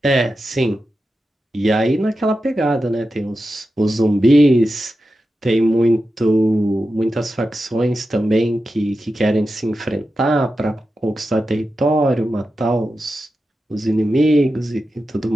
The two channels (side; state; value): both; normal; correlation 0.91